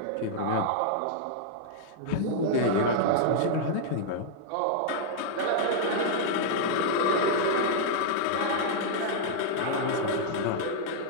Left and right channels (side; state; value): both; different; correlation -0.01